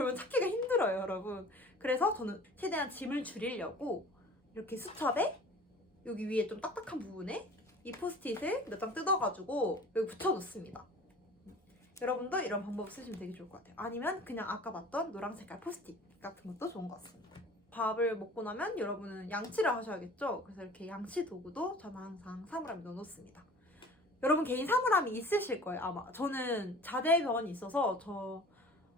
찾기가 힘들어요, 여러분. 그래서 저는 최대한 짐을 줄이려고 이렇게 수첩에 여기 위에 좀 딱딱한 부분에 이 포스트잇을 몇 장 뜯어가지고 여기 붙여놓습니다. 여러분도 이런 방법 쓰시면 되게 좋을 것 같아요. 아니면 그냥 아까 봤던 노란 색깔 포스트잇 같은 것도 좋은 것 같습니다. 밥을 먹고 나면 여러분은 양치를 하셔야겠죠? 그래서 이렇게 양치 도구도 저는 항상 사물함에 넣어놓습니다. 여러분 개인 사물함이 있으실 거예요, 아마. 저는 자대병원이 있어서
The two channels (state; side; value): normal; both; correlation 0.44